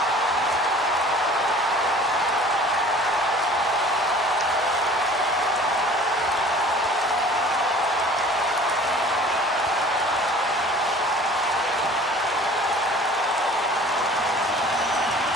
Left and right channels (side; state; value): both; normal; correlation 0.47